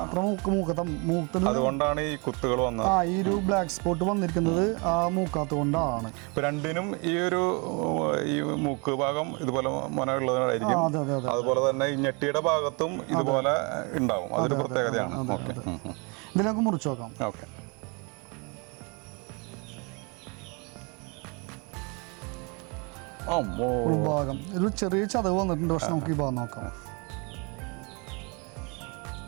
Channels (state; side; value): quieter; left; 31.8 dB